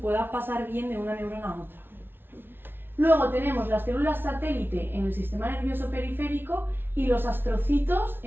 pasar bien de una neurona a otra. Luego tenemos las células satélite en el sistema nervioso periférico y los astrocitos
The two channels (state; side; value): late; left; 0.10 ms